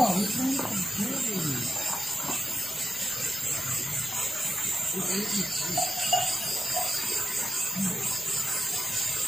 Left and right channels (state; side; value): normal; both; correlation 0.90